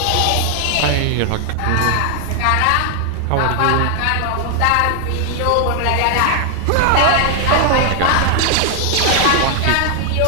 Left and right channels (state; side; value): different; both; correlation 0.00